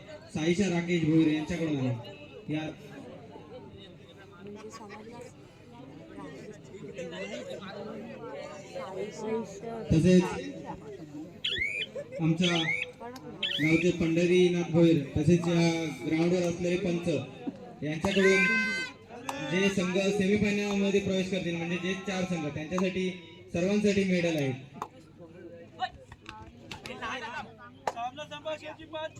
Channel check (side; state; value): both; identical; correlation 1.00